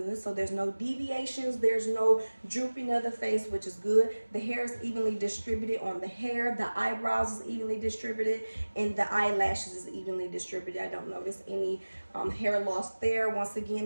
So there's no deviations, there's no drooping of the face, which is good. The hair is evenly distributed on the hair, the eyebrows is evenly distributed, and the eyelashes is evenly distributed. I don't notice any hair loss there. Once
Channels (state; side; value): inverted; both; correlation -1.00